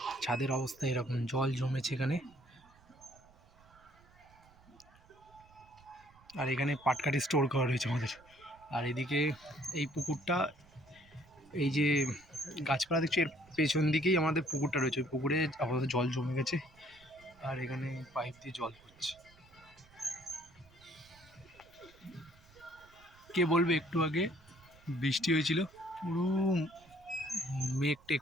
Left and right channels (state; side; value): noise; right; rumble, 26 dB below the sound